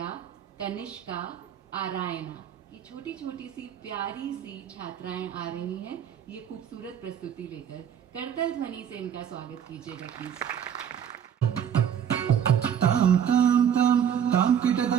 कनिष्का आरायना। ये छोटी छोटी सी प्यारी सी छात्राएं आ रही हैं ये खूबसूरत प्रस्तुति लेकर। करतल ध्वनि से इनका स्वागत कीजिएगा प्लीज। ताम ताम ताम ताम किट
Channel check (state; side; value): quieter; left; 8.7 dB